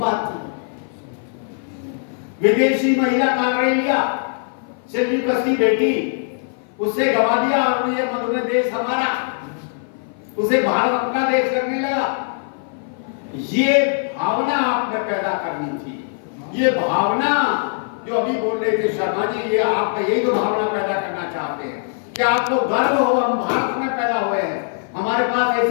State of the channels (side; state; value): right; silent; 55 dB below the other